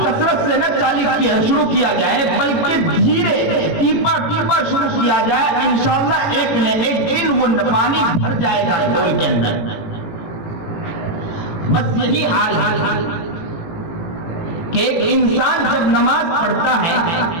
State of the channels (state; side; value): late; right; 18 ms